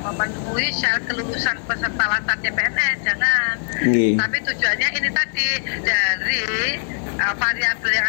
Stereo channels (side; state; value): right; silent; 61 dB below the other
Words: syarat kelulusan peserta latar CPNS, jangan. Nggih. Tapi tujuannya ini tadi dari variabel yang